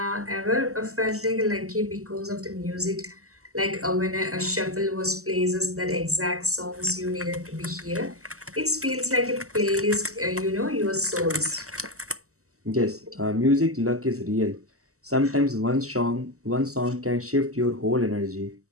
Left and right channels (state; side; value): late; left; 0.64 ms